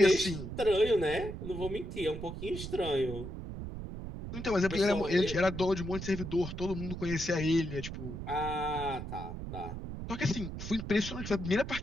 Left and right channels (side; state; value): right; noise; rumble, 7 dB below the sound